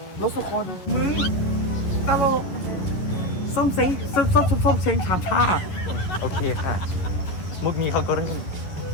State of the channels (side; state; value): right; late; 11 ms